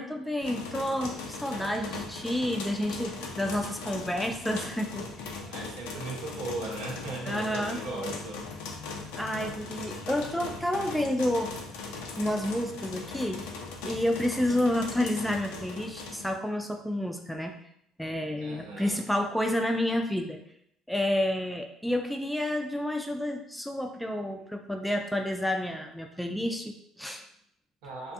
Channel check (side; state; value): both; normal; correlation 0.84